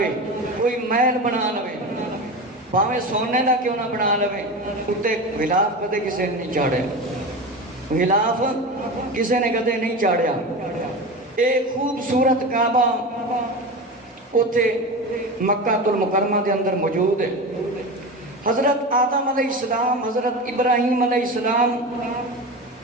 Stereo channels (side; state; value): both; normal; correlation 0.26